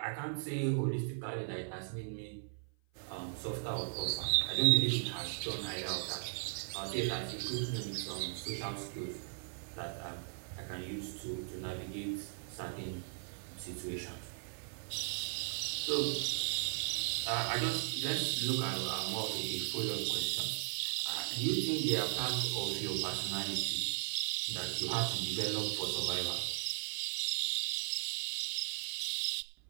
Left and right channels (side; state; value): left; silent; 53 dB below the other